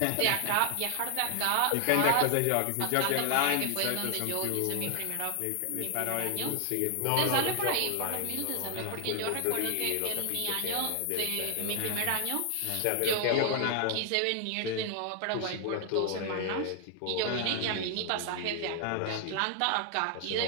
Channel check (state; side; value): different; both; correlation 0.00